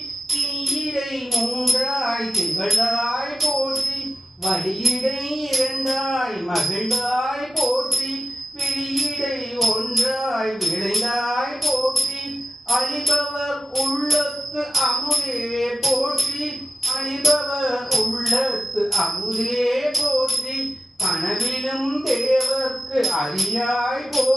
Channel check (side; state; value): both; normal; correlation 0.91